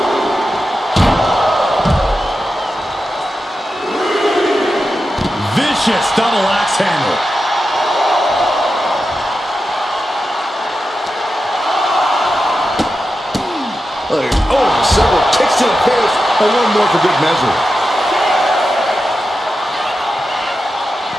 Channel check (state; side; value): normal; both; correlation 0.90